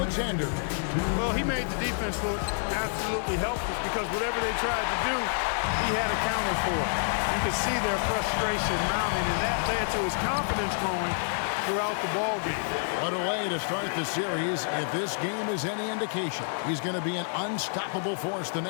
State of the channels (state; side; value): silent; right; digital silence